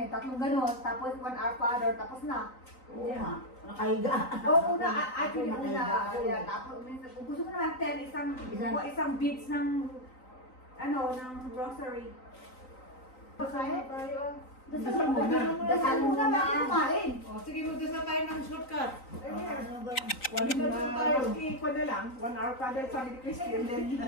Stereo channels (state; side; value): late; right; 3.9 ms